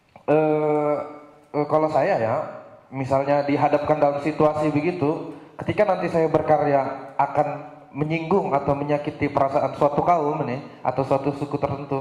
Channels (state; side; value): identical; both; correlation 1.00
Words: kalau saya ya, misalnya dihadapkan dalam situasi begitu, ketika nanti saya berkarya akan menyinggung atau menyakiti perasaan suatu kaum nih, atau suatu suku